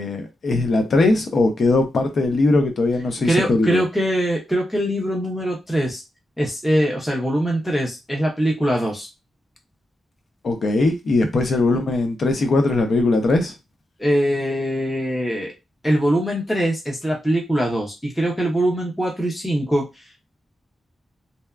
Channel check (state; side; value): normal; both; correlation 0.87